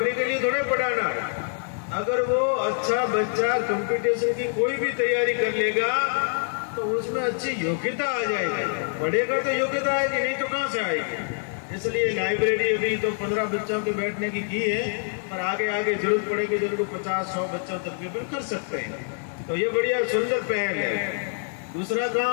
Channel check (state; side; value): silent; right; digital silence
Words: के लिए थोड़े पढ़ाना है। अगर वो अच्छा बच्चा कंपटीशन की कोई भी तैयारी कर लेगा तो उसमें अच्छी योग्यता आ जाएगी। पढ़ेगा तो योग्यता आएगी, नहीं तो कहाँ से आएगी। इसलिए लाइब्रेरी अभी तो 15 बच्चों के बैठने की है, पर आगे आगे जरूरत पड़ेगी तो उनको 50-100 बच्चों तक भी कर सकते हैं। तो ये बढ़िया सुंदर पहल है। दूसरा